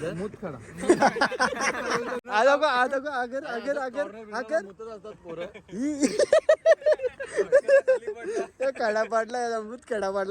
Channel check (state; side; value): identical; both; correlation 1.00